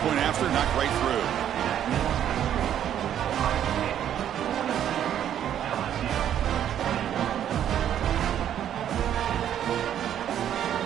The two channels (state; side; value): quieter; left; 10.2 dB